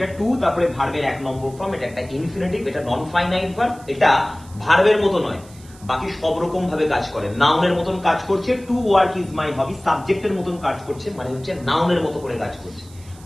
টু তারপরে ভার্বের 1 নম্বর ফর্ম, এটা একটা ইনফিনিটিভ, এটা নন ফাইনাইট ভার্ব, এটা ভার্বের মতো নয়, বাকি সব রকম ভাবে কাজ করে, নাউনের মতন কাজ করছে। টু ওয়ার্ক ইজ মাই হবি সাবজেক্টের মতন কাজ করছে, মানে হচ্ছে নাউনের মতো করে কাজ করছে।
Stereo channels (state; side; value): noise; right; hiss, 24 dB below the sound